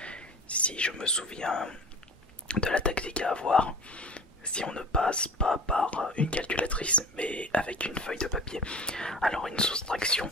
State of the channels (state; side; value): normal; both; correlation 0.39